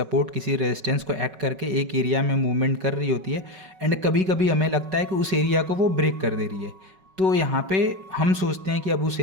किसी रेजिस्टेंस को एक्ट करके एक एरिया में मूवमेंट कर रही होती है एंड कभी कभी हमें लगता है कि उस एरिया को वो ब्रेक कर दे रही है, तो यहाँ पे हम सोचते हैं कि अब उस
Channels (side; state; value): left; late; 5.3 ms